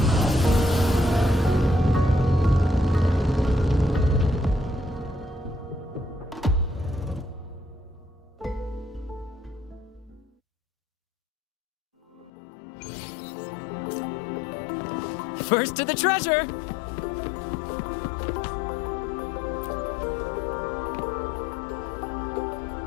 First to the treasure!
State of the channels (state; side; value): drops out; right; at 12.3 s